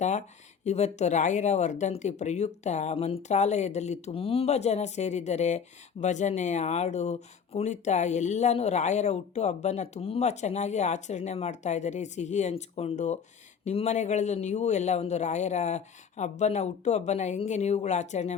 ಇವತ್ತು ರಾಯರ ವರ್ಧಂತಿ ಪ್ರಯುಕ್ತ ಮಂತ್ರಾಲಯದಲ್ಲಿ ತುಂಬ ಜನ ಸೇರಿದ್ದಾರೆ. ಭಜನೆ, ಹಾಡು, ಕುಣಿತ ಎಲ್ಲನೂ ರಾಯರ ಹುಟ್ಟು ಹಬ್ಬನ ತುಂಬ ಚೆನ್ನಾಗಿ ಆಚರಣೆ ಮಾಡ್ತಾಯಿದ್ದಾರೆ, ಸಿಹಿ ಹಂಚ್ಕೊಂಡು. ನಿಮ್ಮ ಮನೆಗಳಲ್ಲೂ ನೀವು ಎಲ್ಲ ಒಂದು ರಾಯರ ಹುಟ್ಟು ಹಬ್ಬನ ಹೆಂಗೆ ನೀವುಗಳು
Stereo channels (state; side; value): quieter; right; 6.7 dB